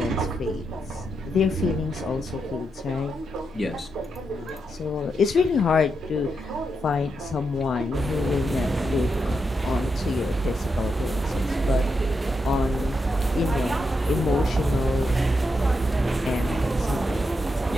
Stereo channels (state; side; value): normal; both; correlation 0.84